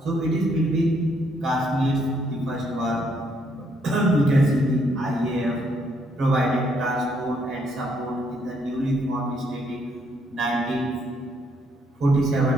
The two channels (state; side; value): normal; both; correlation 0.71